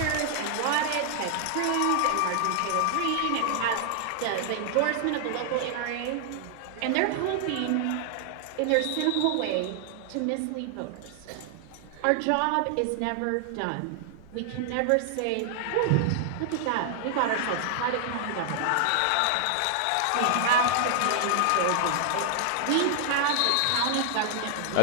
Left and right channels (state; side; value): different; both; correlation 0.00